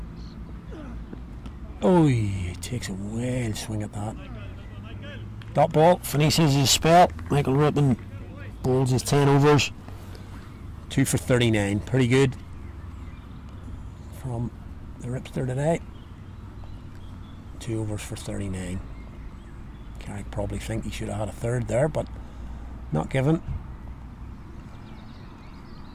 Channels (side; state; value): both; identical; correlation 1.00